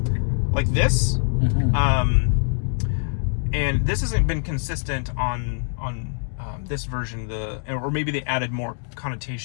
like this. And this hasn't been consistent on this version, or maybe they added more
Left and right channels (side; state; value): right; silent; digital silence